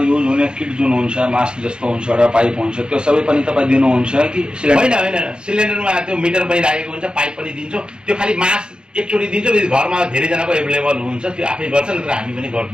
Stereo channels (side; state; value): left; late; 0.049 ms